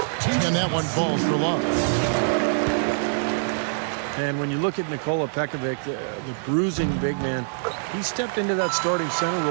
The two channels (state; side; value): silent; left; digital silence